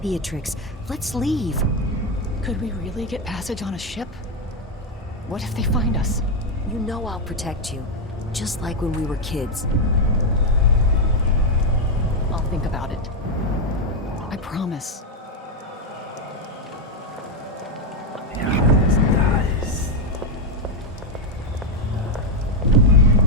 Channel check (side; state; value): both; normal; correlation 0.05